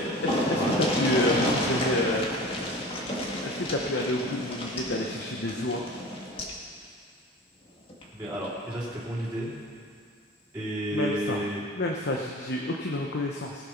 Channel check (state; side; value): normal; both; correlation 0.38